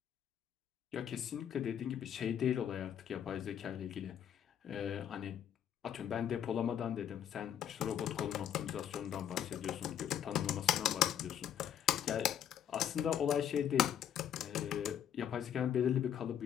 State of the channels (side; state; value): right; quieter; 9.8 dB